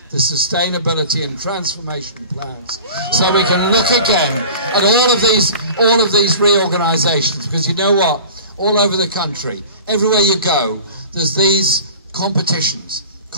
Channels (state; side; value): inverted; both; correlation -0.40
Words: the sustainability and transformation plans, so we can look again at all of these reorganisations. Because you know what? All over the country, everywhere you go, there's these competitions